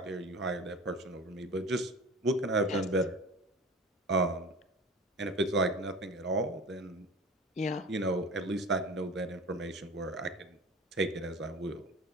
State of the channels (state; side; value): normal; both; correlation 0.37